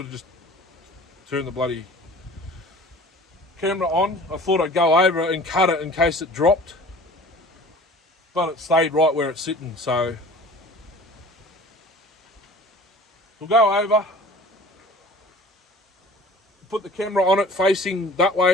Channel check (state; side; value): normal; both; correlation 0.44